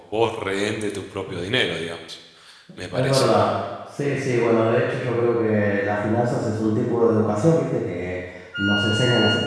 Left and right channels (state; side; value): identical; both; correlation 1.00